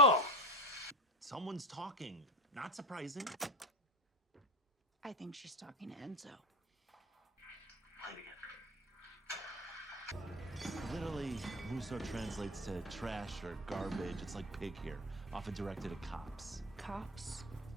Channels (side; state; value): both; normal; correlation 0.25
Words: Someone's talking. Not surprising. I think she's talking to Enzo. Literally, Russo translates to trash or garbage. It's like pig here, often directed at cops. Cops?